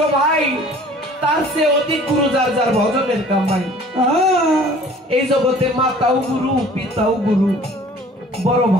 ভাই, তার চেয়ে অধিক গুরু যার যার ভজনের কামাই। এই জগতে মাতাও গুরু, পিতাও গুরু, বড়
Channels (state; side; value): normal; both; correlation 0.50